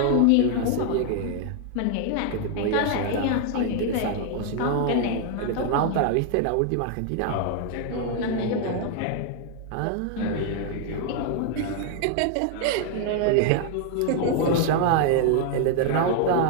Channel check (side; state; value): both; different; correlation 0.00